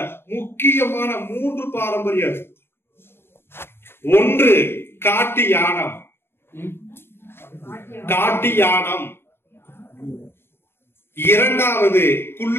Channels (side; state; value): right; late; 0.11 ms